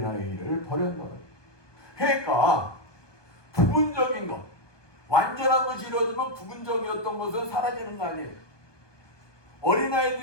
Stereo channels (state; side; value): late; right; 1.2 ms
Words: 버렸노라. 그러니까 부분적인 것, 완전한 것이 이루어지면 부분적이었던 것은 사라지는 거 아니에요.